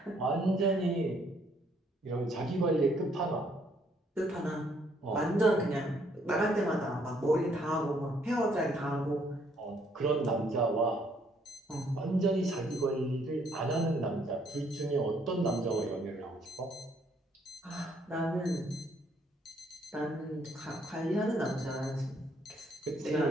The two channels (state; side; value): normal; both; correlation 0.68